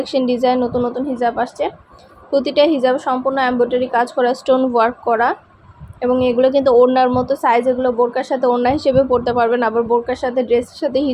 ডিজাইন নতুন নতুন হিজাব আসছে। প্রতিটা হিজাব সম্পূর্ণ এমব্রয়ডারি কাজ করা, স্টোন ওয়ার্ক করা, এবং এগুলো কিন্তু ওড়নার মতো সাইজ। এগুলো বোরকার সাথে ওড়না হিসেবেও পরতে পারবেন, আবার বোরকার সাথে ড্রেসের সাথে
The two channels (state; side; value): identical; both; correlation 1.00